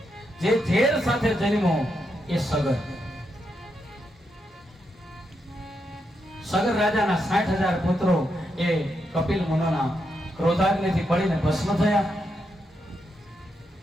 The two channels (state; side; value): normal; both; correlation 0.82